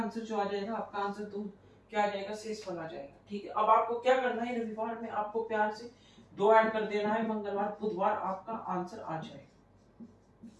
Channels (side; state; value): both; identical; correlation 1.00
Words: जो आ जाएगा, आपका आंसर तो क्या आ जाएगा, शेषफल आ जाएगा। ठीक है, अब आपको क्या करना है, रविवार में आपको प्यार से 2 ऐड कर देना है, मंगलवार बुधवार आपका आंसर आ जाएगा।